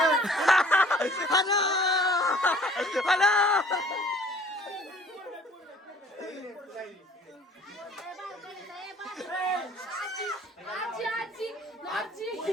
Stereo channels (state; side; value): normal; both; correlation 0.53